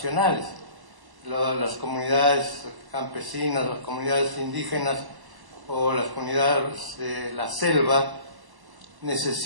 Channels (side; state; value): left; late; 1.0 ms